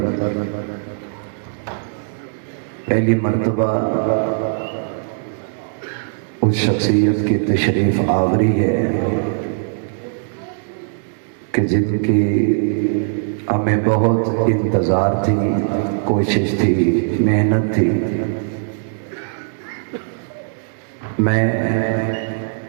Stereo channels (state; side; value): silent; left; digital silence